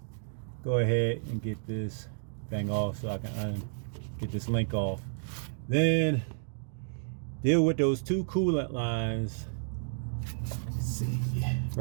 go ahead and get this thing off so I can get this link off. Then deal with those two coolant lines. Let's see,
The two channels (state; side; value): silent; left; digital silence